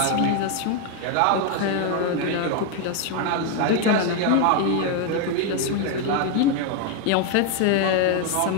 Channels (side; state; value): both; different; correlation 0.01